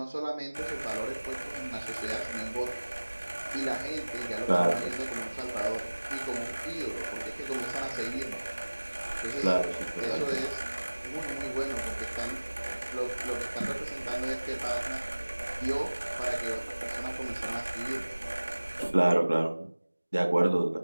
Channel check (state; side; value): inverted; both; correlation -1.00